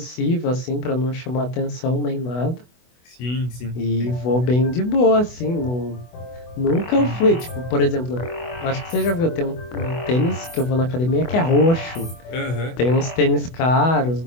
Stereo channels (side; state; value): right; late; 24 ms